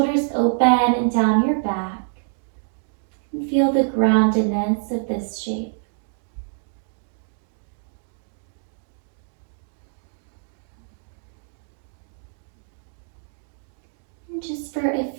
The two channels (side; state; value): left; silent; digital silence